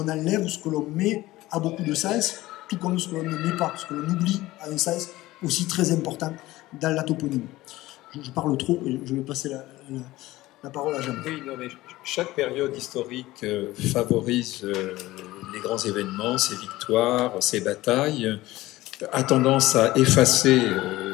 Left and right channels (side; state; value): right; quieter; 17.7 dB